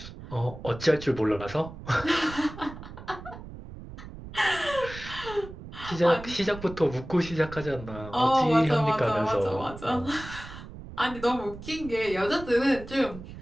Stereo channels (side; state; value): right; noise; rumble, 13 dB below the sound